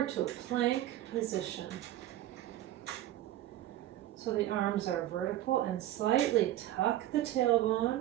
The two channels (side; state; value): left; quieter; 13.7 dB